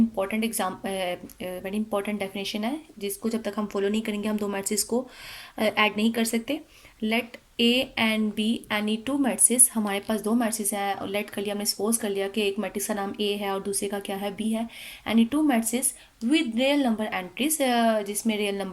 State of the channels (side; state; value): both; identical; correlation 1.00